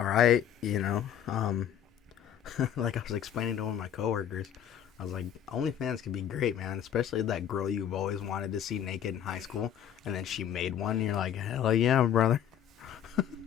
right, you know. Like I was explaining to one of my coworkers, I was like, OnlyFans can be great, man. Especially that girl you've always wanted to see naked in high school, and then she made one. And you're like, hell yeah, brother.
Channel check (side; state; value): right; quieter; 9.5 dB